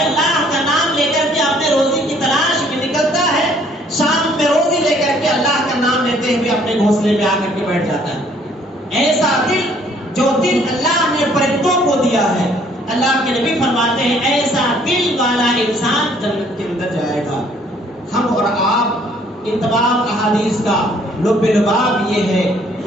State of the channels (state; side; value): normal; both; correlation 0.61